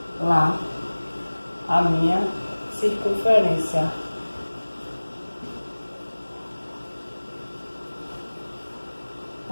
lá, a minha circunferência.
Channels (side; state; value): both; inverted; correlation -1.00